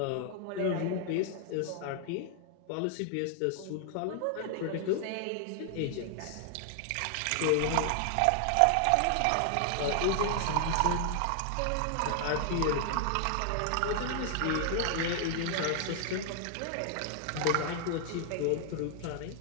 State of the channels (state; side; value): different; both; correlation 0.00